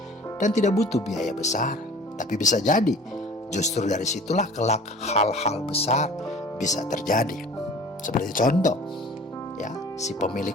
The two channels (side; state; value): both; normal; correlation 0.46